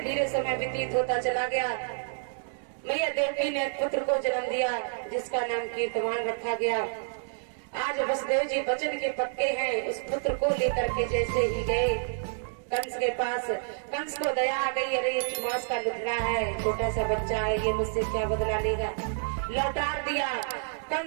धीरे समय व्यतीत होता चला गया। मैया देवकी ने पुत्र को जन्म दिया जिसका नाम कीर्तमान रखा गया। आज वसुदेव जी वचन के पक्के हैं। उस पुत्र को लेकर के जैसे ही गए कंस के पास, कंस को दया आ गई, अरे ये मास का लुखड़ा है, छोटा सा बच्चा है, ये मुझसे क्या बदला लेगा। लौटार दिया।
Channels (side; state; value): left; silent; digital silence